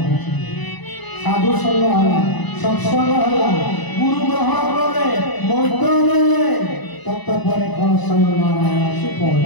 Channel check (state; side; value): late; right; 1.0 ms